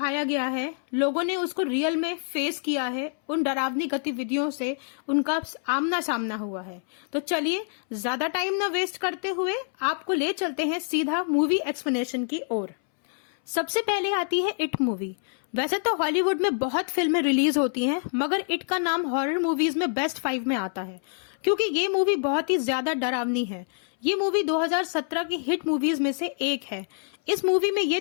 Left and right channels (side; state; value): right; silent; 61 dB below the other